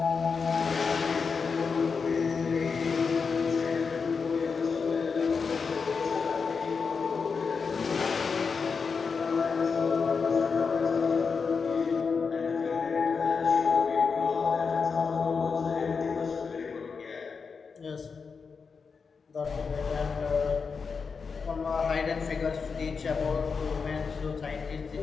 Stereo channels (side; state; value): right; quieter; 5.3 dB